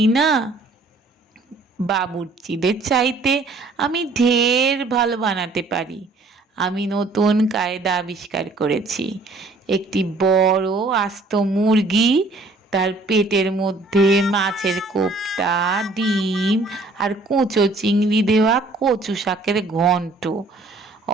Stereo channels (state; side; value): quieter; left; 3.3 dB